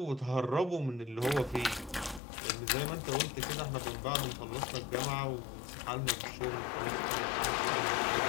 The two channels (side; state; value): right; drops out; at 2.2 s